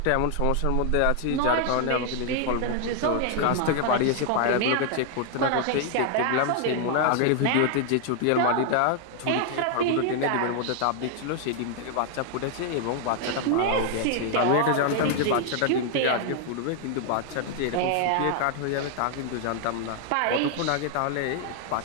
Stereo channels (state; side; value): different; both; correlation 0.00